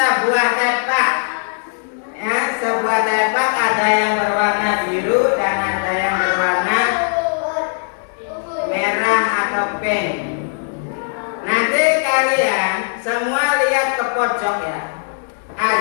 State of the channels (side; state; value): right; silent; 67 dB below the other